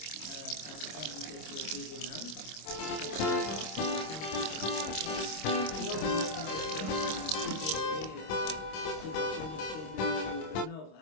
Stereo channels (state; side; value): late; right; 26 ms